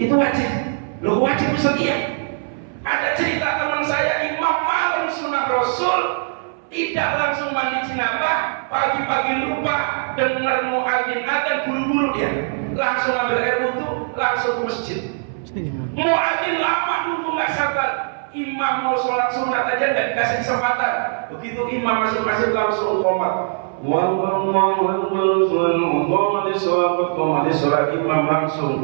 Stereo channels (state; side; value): silent; left; 61 dB below the other